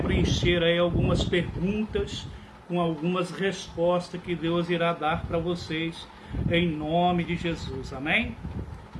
preencher aí algumas perguntas com algumas respostas que Deus irá dar para vocês em nome de Jesus, amém?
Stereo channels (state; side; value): identical; both; correlation 1.00